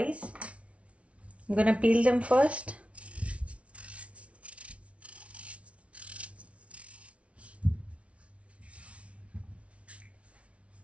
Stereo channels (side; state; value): left; late; 0.062 ms